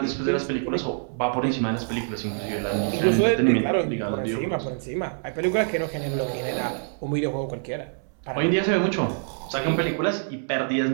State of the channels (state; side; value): silent; left; 61 dB below the other